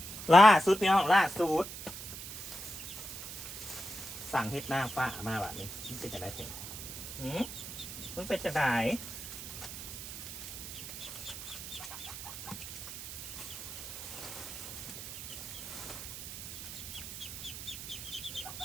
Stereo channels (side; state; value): right; noise; hiss, 9 dB below the sound